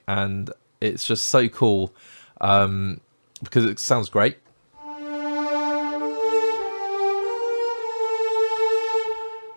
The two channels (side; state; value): both; inverted; correlation -1.00